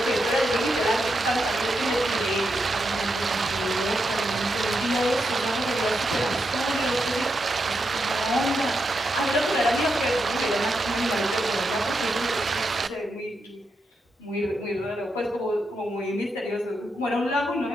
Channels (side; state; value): both; normal; correlation 0.84